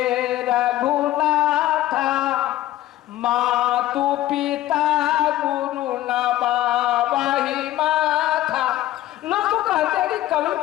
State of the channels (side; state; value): right; quieter; 14.6 dB